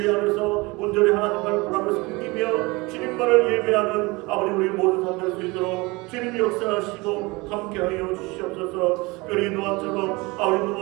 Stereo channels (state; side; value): quieter; left; 24.2 dB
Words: 안에서 온전히 하나님만을 바라며 섬기며 주님만을 예배하는 아버지 우리 모든 삶 될 수 있도록 주님이 역사하시고 함께하여 주시옵소서. 우리 노아처럼 아버지